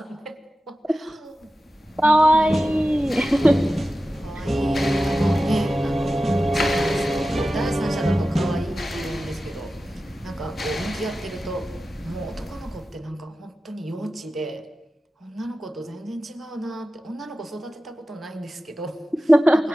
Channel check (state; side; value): normal; both; correlation 0.94